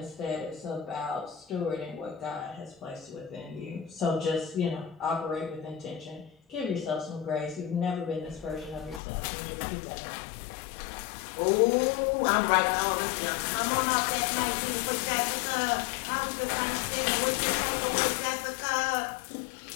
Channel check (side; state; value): right; drops out; at 9.0 s